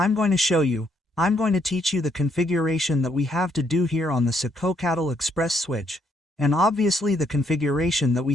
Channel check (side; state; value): both; normal; correlation 0.72